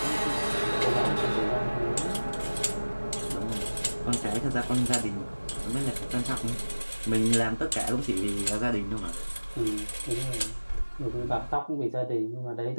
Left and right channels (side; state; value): both; inverted; correlation -1.00